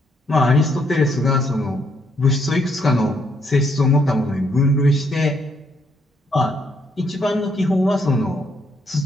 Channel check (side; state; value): both; normal; correlation 0.72